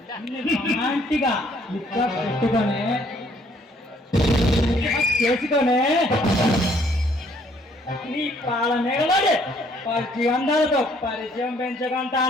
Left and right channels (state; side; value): normal; both; correlation 0.64